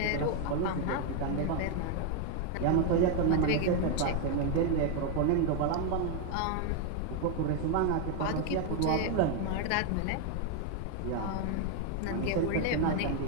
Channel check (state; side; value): different; both; correlation 0.01